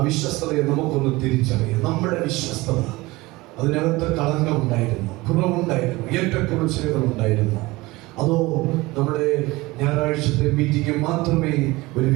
വിശ്വസ്തതയെ നമുക്കൊന്ന് തിരിച്ചറിയാം. നമ്മുടെ വിശ്വസ്തത, അതിനകത്ത് കളങ്കമുണ്ടായിരുന്നു, കുറവുണ്ടായിരുന്നു, ഏറ്റക്കുറച്ചിലുകൾ ഉണ്ടായിരുന്നു. അതോ നമ്മുടെ ഞായറാഴ്ചത്തെ മീറ്റിംഗ് മാത്രമേ ഒരു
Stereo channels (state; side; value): quieter; left; 21.1 dB